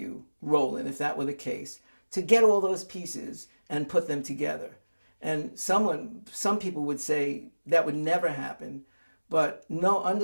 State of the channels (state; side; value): inverted; both; correlation -1.00